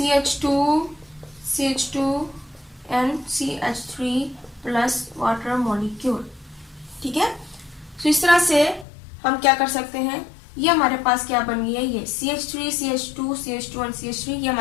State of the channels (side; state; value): right; drops out; at 8.8 s